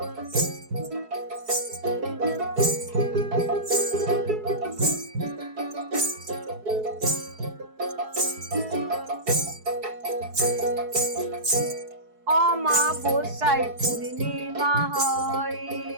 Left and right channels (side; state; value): left; late; 4.7 ms